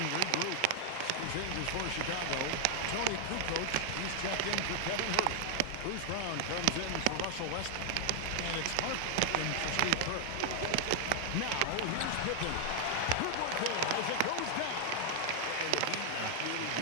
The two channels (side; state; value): both; different; correlation 0.00